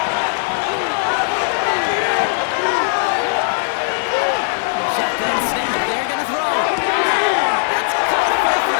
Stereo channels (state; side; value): silent; right; 67 dB below the other